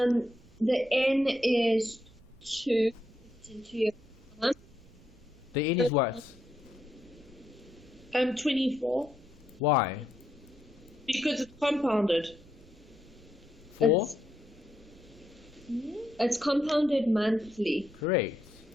N is 2. It's into your The N is what? 24. Why? Because it's compounded. 4? It's compounded monthly. Correct.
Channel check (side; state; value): right; noise; rumble, 24 dB below the sound